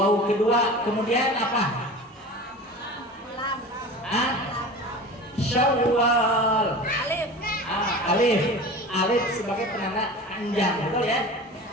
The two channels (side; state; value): both; normal; correlation 0.35